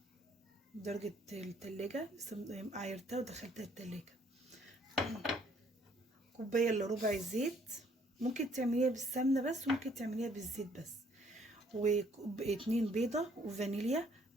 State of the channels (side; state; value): both; normal; correlation 0.63